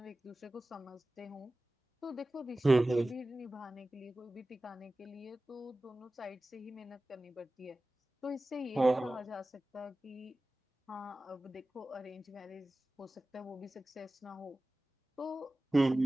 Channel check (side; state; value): both; normal; correlation 0.96